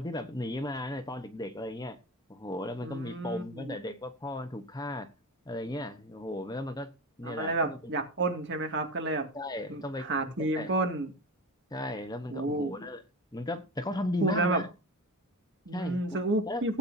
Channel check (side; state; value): both; normal; correlation 0.28